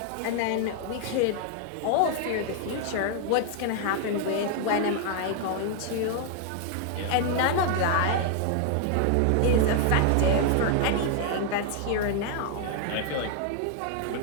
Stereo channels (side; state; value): both; different; correlation 0.00